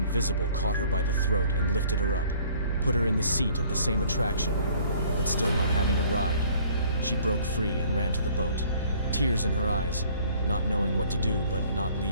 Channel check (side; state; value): both; inverted; correlation -0.56